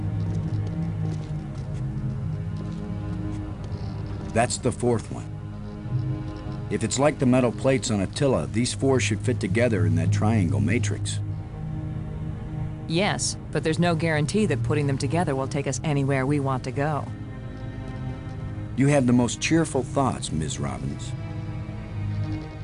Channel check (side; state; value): both; identical; correlation 1.00